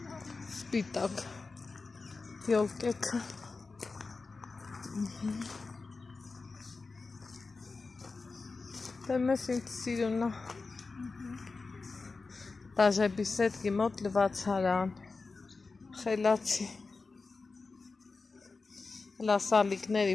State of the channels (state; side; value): quieter; right; 4.0 dB